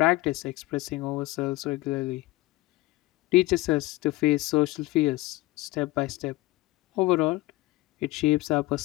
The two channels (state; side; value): quieter; right; 19.5 dB